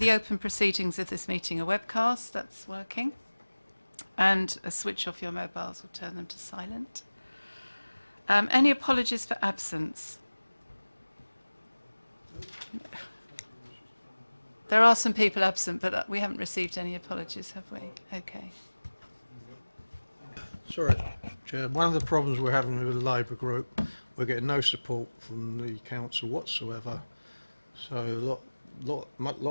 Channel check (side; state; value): both; inverted; correlation -1.00